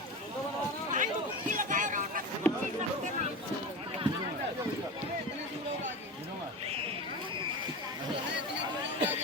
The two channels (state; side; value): normal; both; correlation 0.26